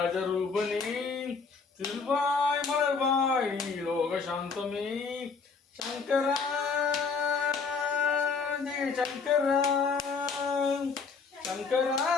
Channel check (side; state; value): right; quieter; 5.0 dB